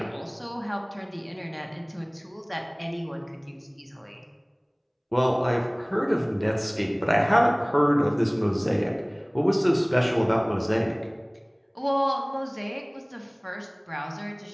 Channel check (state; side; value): identical; both; correlation 1.00